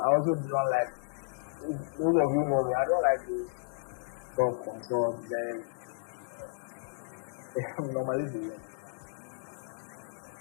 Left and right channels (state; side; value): silent; right; digital silence